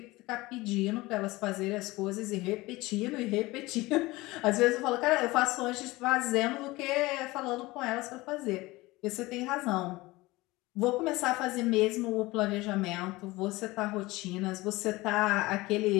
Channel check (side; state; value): right; quieter; 20.6 dB